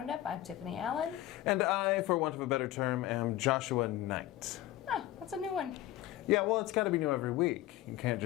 I'm Tiffani Allen. And I, for want of a better term, am Joshua Nite. Ah, that's a new one. Yeah, well, it's got to be new every week. You can't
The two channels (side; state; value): right; quieter; 14.6 dB